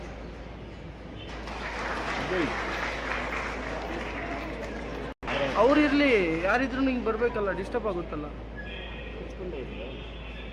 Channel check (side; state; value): both; identical; correlation 1.00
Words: ಅವ್ರಿರ್ಲಿ, ಯಾರಿದ್ರು ನಿಂಗೆ ಬರ್ಬೇಕಲ್ಲ, ಡಿಸ್ಟರ್ಬ್ ಆಗುತ್ತಲ್ಲ.